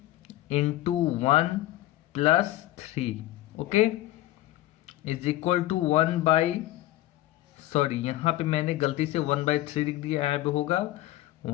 into 1 plus 3। Okay, is equal to 1/, यहाँ पे मैंने गलती से 1/3 लिख दिया, यहाँ पे होगा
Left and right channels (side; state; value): right; quieter; 15.8 dB